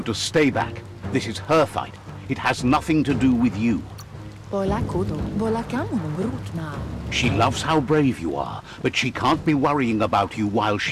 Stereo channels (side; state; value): both; identical; correlation 1.00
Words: to stay back. This is her fight. It has nothing to do with you. Bola kudo. Bola kamunum rutna. She loves how brave you are, but she can't be worrying about you while